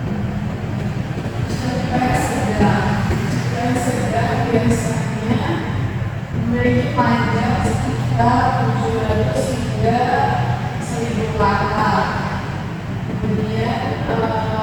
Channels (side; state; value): both; identical; correlation 1.00